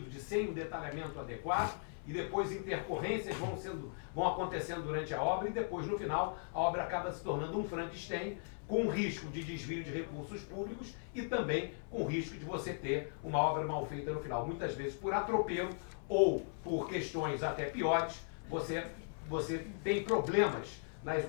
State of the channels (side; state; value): right; silent; 52 dB below the other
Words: de sem o detalhamento adequado, e depois intercorrências vão acontecendo durante a obra, e depois, no final, a obra acaba se tornando um Frankenstein, com risco de desvio de recursos públicos e também com risco de você ter uma obra mal feita no final. Muitas vezes por atropelo ou por questões até piores, você tem problemas na